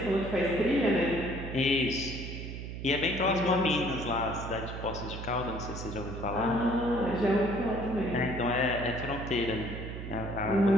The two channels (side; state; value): right; noise; hum, 8 dB below the sound